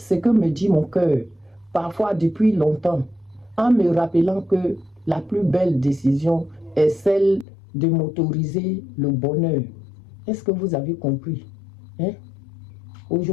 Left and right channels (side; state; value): right; drops out; at 7.5 s